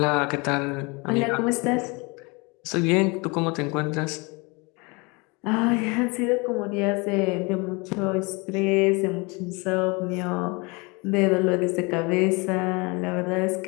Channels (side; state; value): right; quieter; 28.1 dB